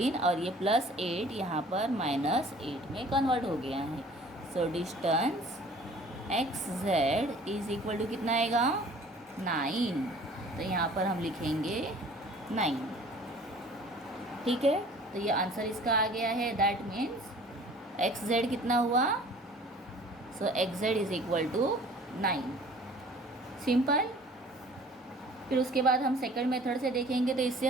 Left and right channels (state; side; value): normal; both; correlation 0.50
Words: और ये प्लस 8 यहाँ पर माइनस 8 में कन्वर्ट हो गया है। So distance X Z is equal to कितना आएगा, 9। तो यहाँ पर हम लिखेंगे 9। ठीक है, तो ये आंसर इसका आ गया है। दैट मीन्स एक्स जेड कितना हुआ, so X Z is equal to 9। Simple. फिर उसके बाद हम सेकंड मेथड से देखेंगे। तो इससे